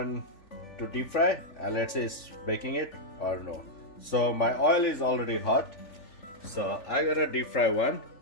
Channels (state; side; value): late; right; 3.4 ms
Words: to deep fry, and let's say it's baking it or no. So my oil is already hot, so I'm gonna deep fry one,